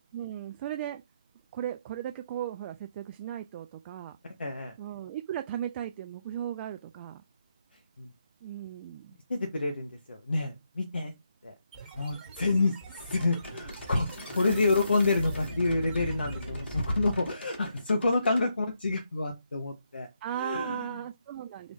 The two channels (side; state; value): both; inverted; correlation -0.79